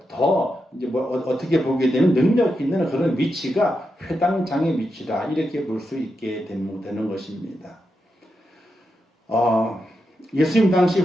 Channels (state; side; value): normal; both; correlation 0.86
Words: 더 이제 어떻게 보게 되면 능력 있는 그런 위치가 회당장의 위치다, 이렇게 볼 수 있게 되는 것입니다. 예수님 당시